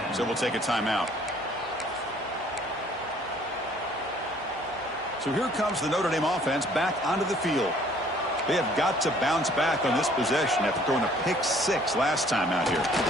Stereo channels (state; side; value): normal; both; correlation 0.58